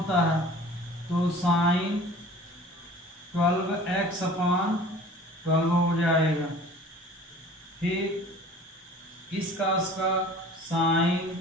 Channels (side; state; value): both; normal; correlation 0.45